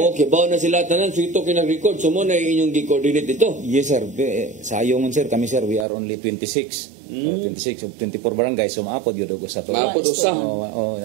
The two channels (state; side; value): drops out; left; at 5.9 s